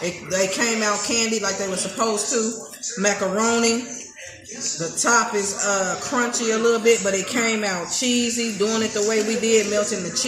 came out candied like they were supposed to. Macaroni. The top is crunchy a little bit, but it came out cheesy. Doing it the way we did, melting the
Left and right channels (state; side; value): identical; both; correlation 1.00